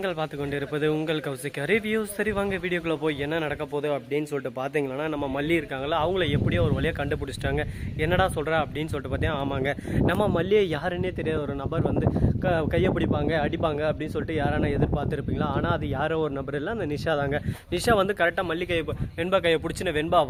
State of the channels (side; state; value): both; identical; correlation 1.00